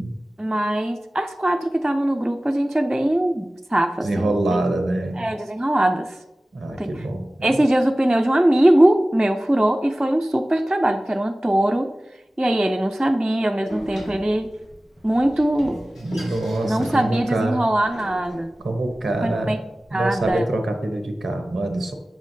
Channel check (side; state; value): both; normal; correlation 0.97